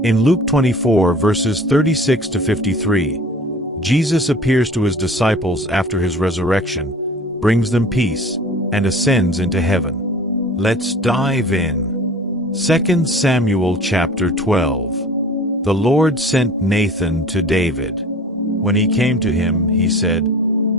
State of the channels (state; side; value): normal; both; correlation 0.43